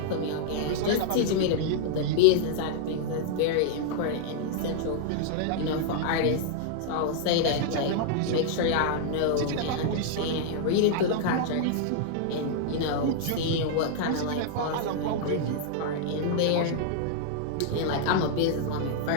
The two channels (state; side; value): different; both; correlation -0.01